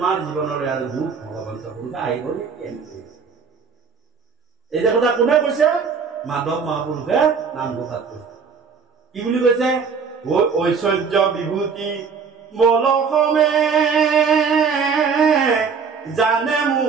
জীৱনৰে আৰু দুখ ভগৱন্ত পুৰুষ আহিব নেকি এই যে কথা কোনে কৈছে মাধৱ মহাপুৰুষে নামঘোষাত কৈছে কি বুলি কৈছে ঐশ্বৰ্য বিভূতি বলসমে জানে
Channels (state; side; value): quieter; left; 5.8 dB